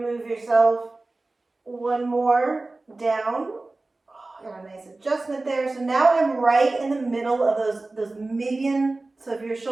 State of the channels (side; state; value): left; quieter; 3.2 dB